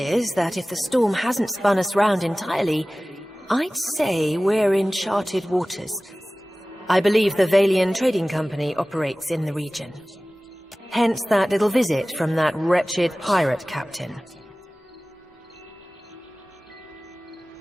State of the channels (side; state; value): both; normal; correlation 0.98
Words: that if the storm hasn't spun us round entirely, I'd say we're in charted waters. I believe the Valian Trading Company operates in the region. Hence that little visit from that wretched pirate captain.